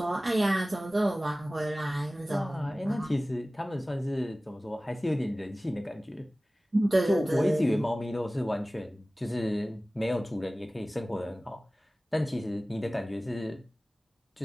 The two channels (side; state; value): both; normal; correlation 0.97